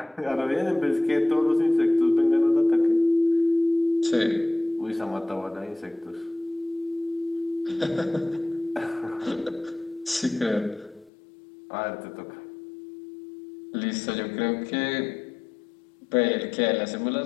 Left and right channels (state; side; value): drops out; right; at 11.1 s